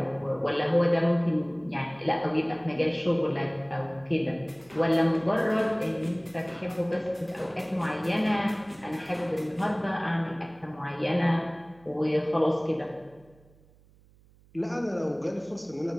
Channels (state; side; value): noise; right; hum, 28 dB below the sound